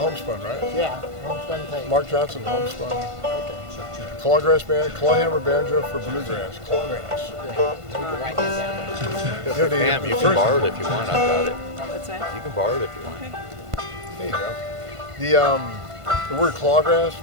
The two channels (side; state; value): left; late; 1.5 ms